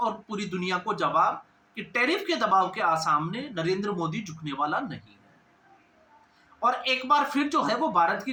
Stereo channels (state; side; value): identical; both; correlation 1.00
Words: पूरी दुनिया को जवाब कि टैरिफ के दबाव के सामने नरेंद्र मोदी झुकने वाला नहीं है। और एक बार फिर जो है वो भारत